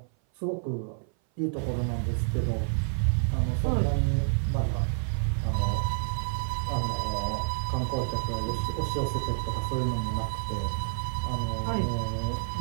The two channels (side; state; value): left; silent; 57 dB below the other